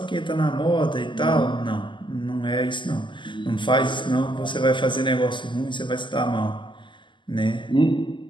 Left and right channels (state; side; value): late; right; 0.24 ms